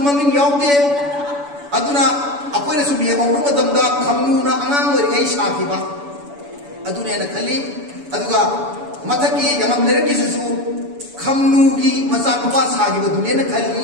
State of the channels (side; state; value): left; late; 7.0 ms